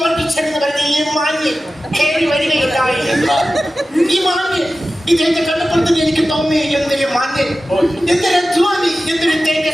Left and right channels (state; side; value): normal; both; correlation 0.95